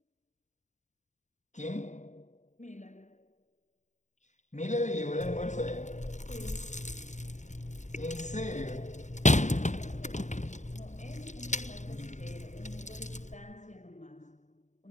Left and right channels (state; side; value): late; right; 0.35 ms